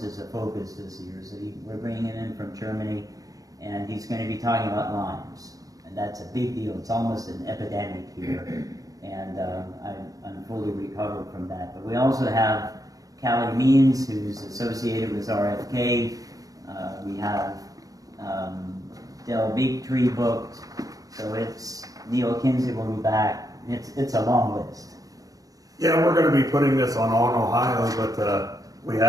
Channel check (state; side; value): late; left; 0.17 ms